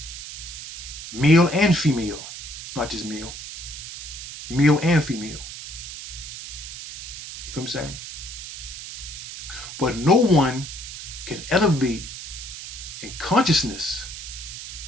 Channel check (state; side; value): noise; right; hiss, 10 dB below the sound